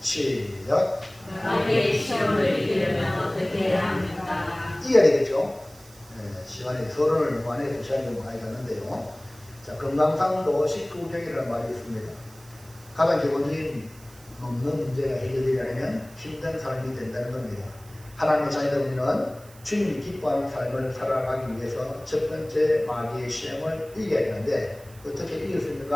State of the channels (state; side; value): noise; right; hiss, 23 dB below the sound